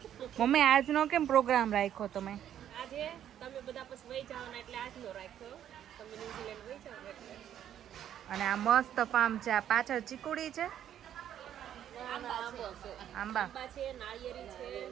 મમ્મી આજનો કેમ પ્રોગ્રામ રાખ્યો તમે? આજે તમે બધા પછી વહી જાવ ને એટલે આજનો રાખ્યો. તમે ન્યુઝીલેન્ડ વહી જાવ એટલે. અને આ મસ્ત ફાર્મ છે. આ પાછળ ચીકુડી છે. આંબા છે, નાળિયેરી છે,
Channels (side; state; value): left; quieter; 10.4 dB